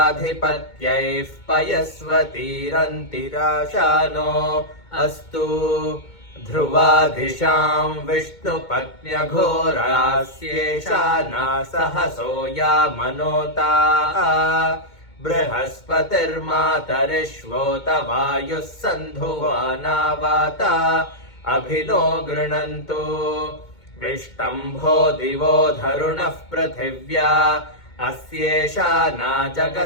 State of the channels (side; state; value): right; late; 2.2 ms